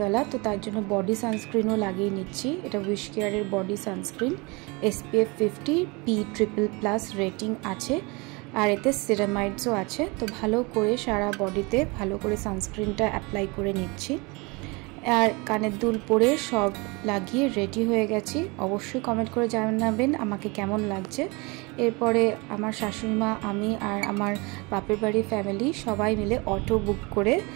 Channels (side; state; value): left; quieter; 27.3 dB